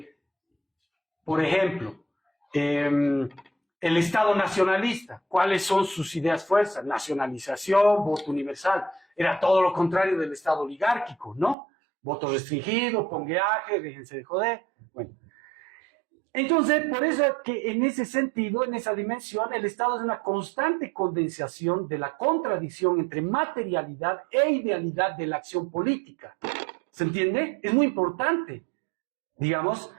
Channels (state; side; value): drops out; left; at 11.6 s